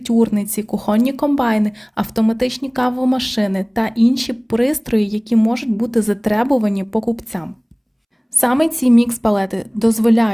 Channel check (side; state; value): both; identical; correlation 1.00